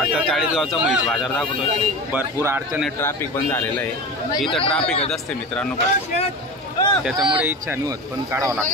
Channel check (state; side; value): normal; both; correlation 0.29